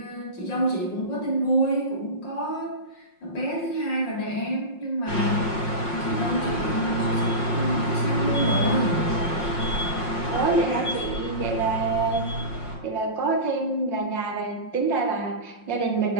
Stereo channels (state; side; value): late; right; 5.6 ms